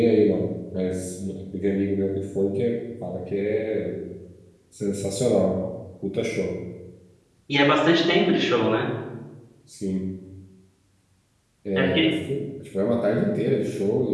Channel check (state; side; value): identical; both; correlation 1.00